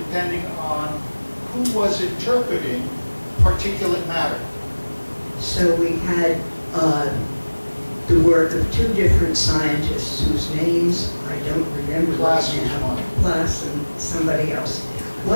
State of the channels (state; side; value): inverted; both; correlation -1.00